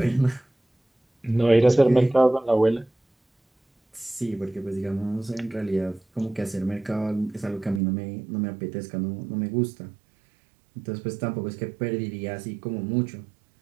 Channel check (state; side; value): drops out; left; at 7.8 s